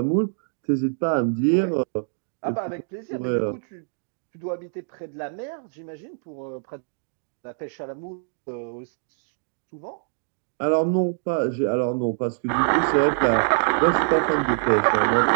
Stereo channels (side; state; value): left; silent; digital silence